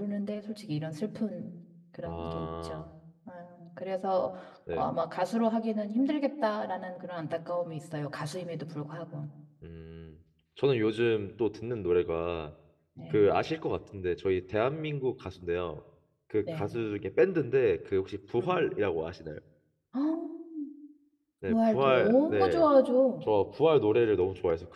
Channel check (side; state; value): both; identical; correlation 1.00